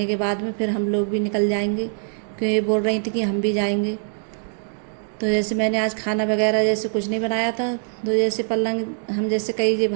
के बाद में फिर हम लोग भी निकल जाएंगे, क्योंकि ये बोल रही थी कि हम भी जाएंगे। तो जैसे मैंने आज खाना वगैरह जैसे कुछ नहीं बनाया था, तो जैसे पलंग हम जैसे कई जो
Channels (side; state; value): left; silent; 63 dB below the other